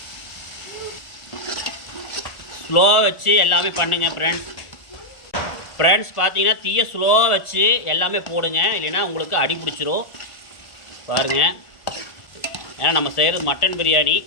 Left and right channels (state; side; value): late; right; 1.5 ms